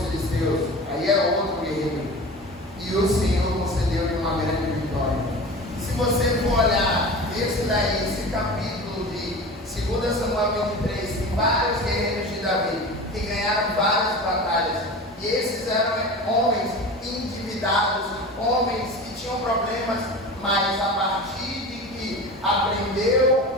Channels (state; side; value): normal; both; correlation 0.33